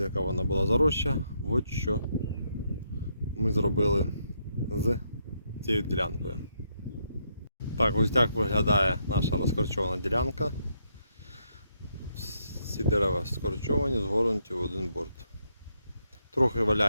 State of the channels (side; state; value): both; inverted; correlation -0.77